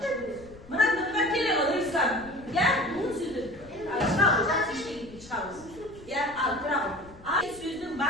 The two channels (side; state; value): left; noise; rumble, 21 dB below the sound